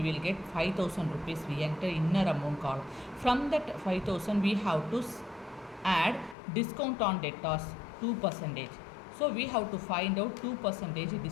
will get 5,000 rupees. We enter inner amount column. From that 5,000 we have to add discount on debtors 2%. So we have to find out 2%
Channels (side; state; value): right; drops out; at 6.4 s